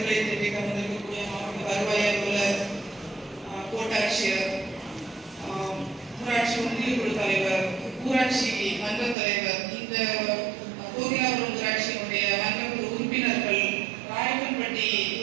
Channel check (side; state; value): left; drops out; at 9.2 s